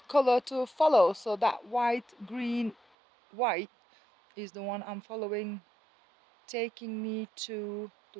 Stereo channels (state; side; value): drops out; left; at 2.8 s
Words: color to follow. So that white, green, white is the one I'm following, taking me to the